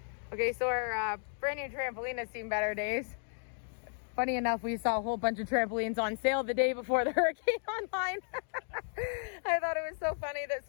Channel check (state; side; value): silent; right; 55 dB below the other